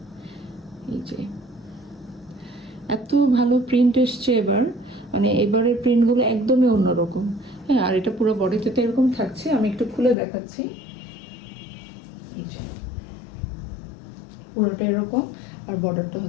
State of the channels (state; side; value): drops out; right; at 10.2 s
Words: এই যে এত ভালো প্রিন্ট এসছে এবার, মানে এবারের প্রিন্টগুলো একদমই অন্যরকম। হ্যাঁ, আর এটা পুরো বডিতে তো এরকম থাকছে, আমি একটু খুলে দেখাচ্ছি। এই যে পুরোটা এরকম, আর বর্ডারটা